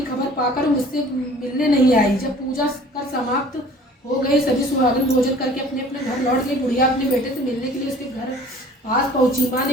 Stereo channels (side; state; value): both; normal; correlation 0.49